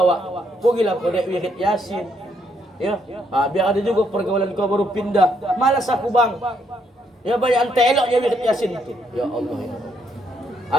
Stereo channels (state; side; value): normal; both; correlation 0.73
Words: pergilah pada wirid Yasin. Ya, biar ada juga pergaulan kau baru pindah. Malas aku bang. Ya banyak ante eloknya wirid Yasin itu. Ya Allah. Ya.